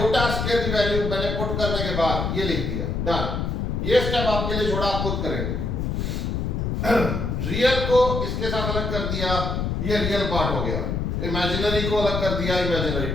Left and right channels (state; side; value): noise; left; rumble, 1 dB below the sound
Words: स्क्वायर की वैल्यू मैंने पुट करने के बाद ये लिख दिया, डन। ये स्टेप आपके लिए छोड़ा, आप खुद करेंगे। रियल को इसके साथ अलग कर दिया, ये रियल पार्ट हो गया, इमेजिनरी को अलग कर दिया, इमेजिनरी